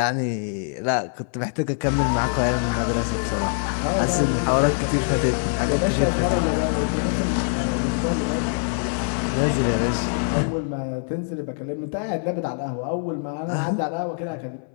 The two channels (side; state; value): right; silent; 58 dB below the other